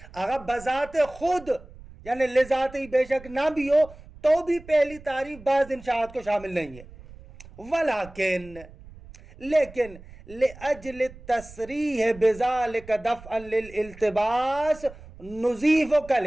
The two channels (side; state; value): right; noise; rumble, 19 dB below the sound